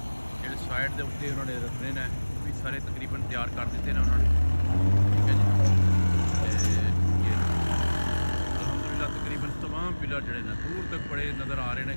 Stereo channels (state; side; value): inverted; both; correlation -1.00